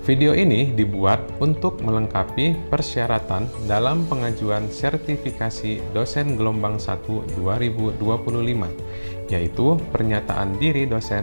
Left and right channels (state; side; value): inverted; both; correlation -1.00